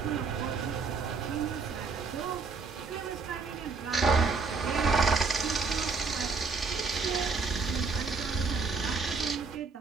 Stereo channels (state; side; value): quieter; left; 4.6 dB